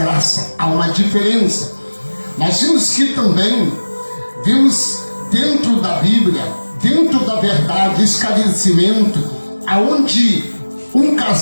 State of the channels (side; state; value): both; inverted; correlation -1.00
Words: Há uma diferença. Nós vimos que também vimos dentro da Bíblia, dentro da verdade, esclarecimento, aonde um